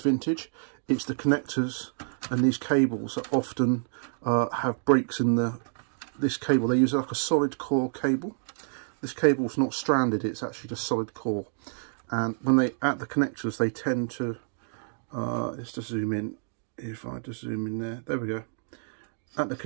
it's the connectors and these cables that often have breaks in this cable. They use like a solid core cable. This cable's not stranded, it's actually just solid core. And when they add the connectors, they tend to, let's just zoom in. If I just zoom in there we go. At the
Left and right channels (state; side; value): silent; left; digital silence